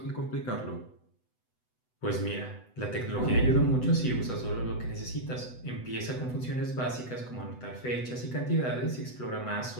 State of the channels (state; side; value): late; right; 8.0 ms